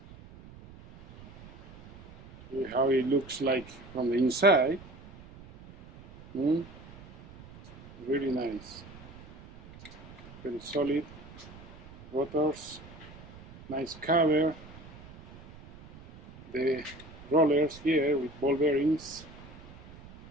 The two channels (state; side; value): noise; right; rumble, 19 dB below the sound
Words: See how it looks like from the inside. Really nice. Very solid rotors, nice cover. The rollers here with ball bearings,